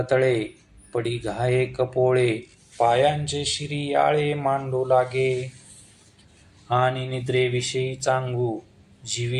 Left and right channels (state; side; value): identical; both; correlation 1.00